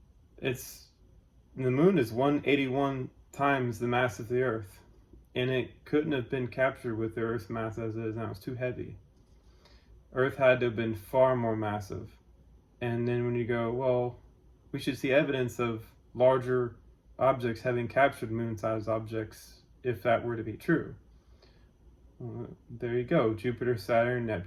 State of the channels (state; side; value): identical; both; correlation 1.00